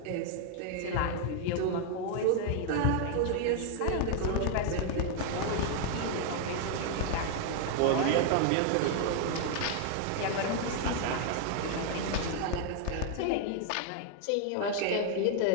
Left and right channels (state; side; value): different; both; correlation 0.00